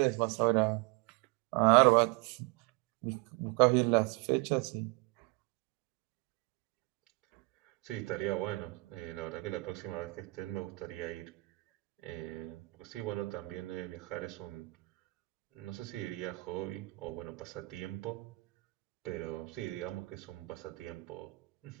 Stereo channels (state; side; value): quieter; left; 24.7 dB